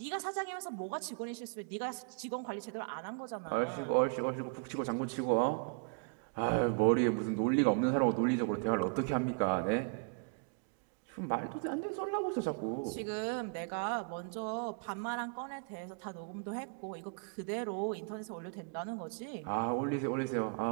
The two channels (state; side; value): quieter; left; 39.5 dB